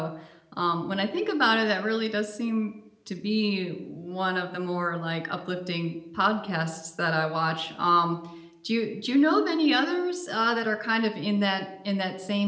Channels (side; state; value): both; identical; correlation 1.00